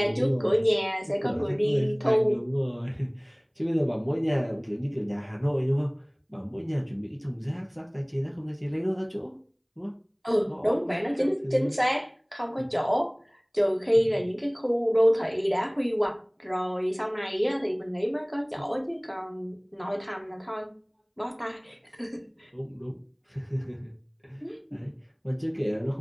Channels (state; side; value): identical; both; correlation 1.00